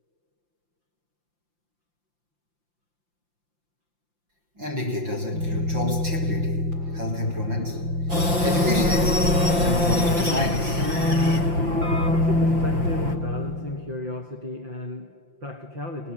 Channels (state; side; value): late; left; 5.8 ms